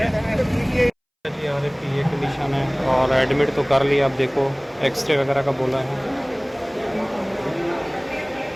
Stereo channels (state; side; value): identical; both; correlation 1.00